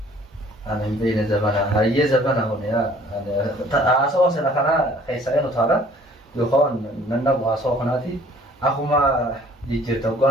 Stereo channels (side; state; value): both; normal; correlation 0.55